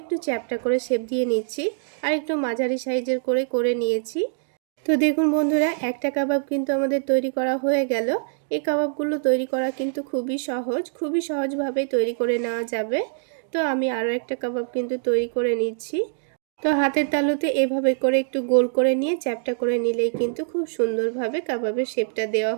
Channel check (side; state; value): left; silent; digital silence